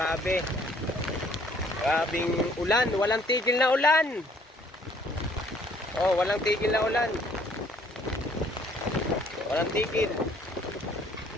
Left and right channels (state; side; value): normal; both; correlation 0.61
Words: Grabing ulan, walang tigil na ulan. Oh, walang tigil na ulan. Walang tigil.